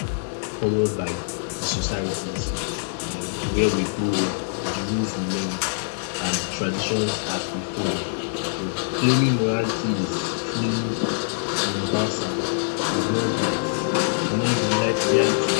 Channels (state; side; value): silent; right; 62 dB below the other